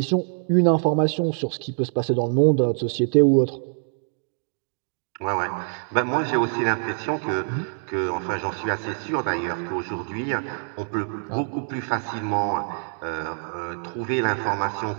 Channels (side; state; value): left; silent; digital silence